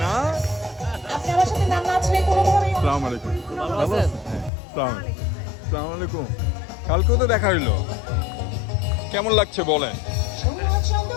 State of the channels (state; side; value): drops out; right; at 4.5 s